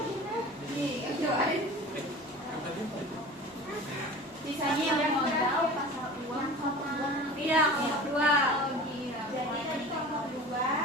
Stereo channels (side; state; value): both; normal; correlation 0.38